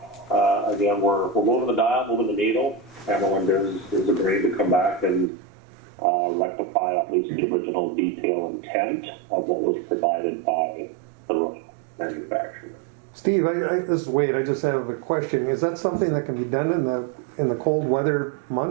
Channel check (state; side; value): drops out; left; at 5.3 s